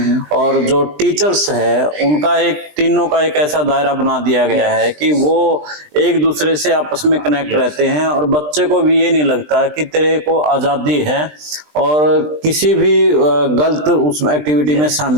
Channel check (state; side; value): late; left; 20 ms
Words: और जो टीचर्स है उनका तीनों का एक ऐसा दायरा बना दिया गया है कि वो एक दूसरे से आपस में कनेक्ट रहते हैं और बच्चे को भी ये नहीं लगता कि तेरे को आजादी है और किसी भी गलत उस एक्टिविटी में